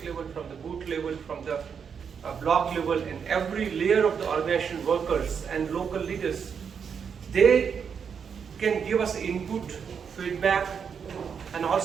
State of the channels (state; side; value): quieter; left; 6.8 dB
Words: level, from the booth level, from the block level, and every layer of the organization workers and local leaders. They can give us input, feedback, and